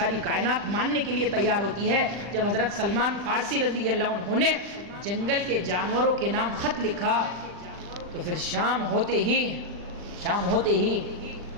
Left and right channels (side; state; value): left; late; 40 ms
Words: کائنات ماننے کے لیے تیار ہوتی ہے۔ جب حضرت سلمان فارسی رضی اللہ عنہ نے جنگل کے جانوروں کے نام خط لکھا، تو پھر شام ہوتے ہی